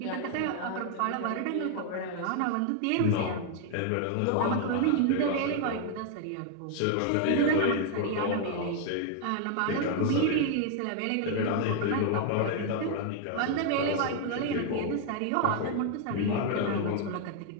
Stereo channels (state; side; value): different; both; correlation 0.00